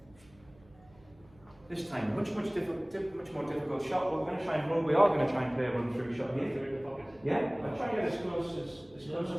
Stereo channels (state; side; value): noise; right; hum, 28 dB below the sound